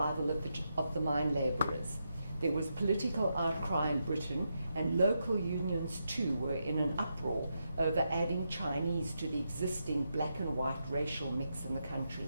of the mine labourers. There was political outcry in Britain, and local unions too were in an uproar over adding Chinese to the existing black and white racial mix in the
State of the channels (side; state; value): both; inverted; correlation -0.84